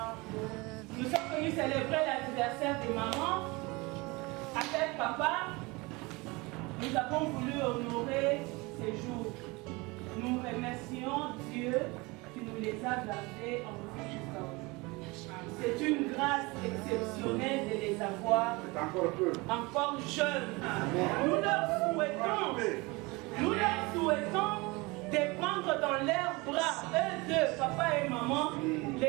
Nous sommes venus célébrer l'anniversaire de maman. Avec papa, nous avons voulu honorer ces jours. Nous remercions Dieu qui nous les a gardés en vie jusqu'à aujourd'hui. C'est une grâce exceptionnelle de les avoir encore jeunes. Nous leur souhaitons de prendre dans leurs bras, eux deux, papa et maman,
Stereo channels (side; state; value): left; quieter; 24.8 dB